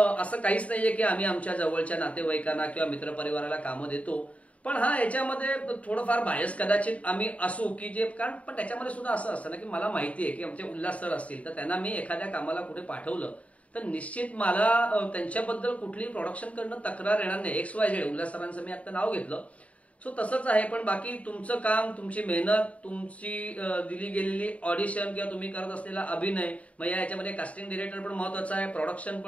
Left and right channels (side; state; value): right; late; 0.066 ms